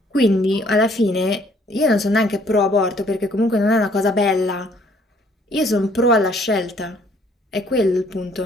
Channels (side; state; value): both; normal; correlation 0.62